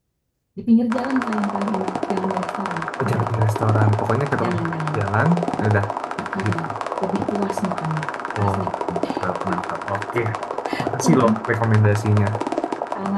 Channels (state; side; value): identical; both; correlation 1.00